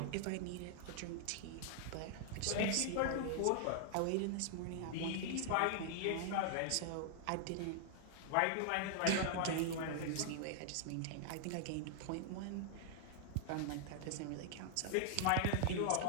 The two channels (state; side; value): different; both; correlation -0.01